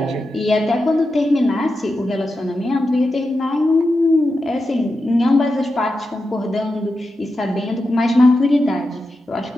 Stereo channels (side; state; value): both; normal; correlation 0.89